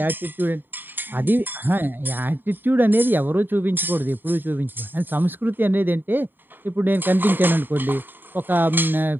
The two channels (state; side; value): late; left; 0.094 ms